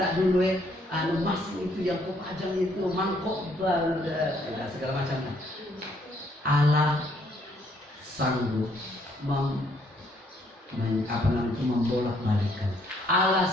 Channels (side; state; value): both; normal; correlation 0.68